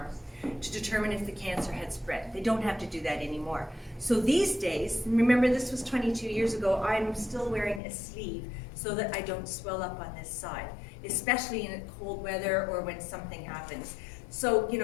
to determine if the cancer had spread. They don't have to do that anymore. So these days, remember this was 22 years ago, I'm still wearing a sleeve so that I don't swell up on this side, especially in cold weather or when something happens. So, you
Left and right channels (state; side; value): drops out; right; at 7.8 s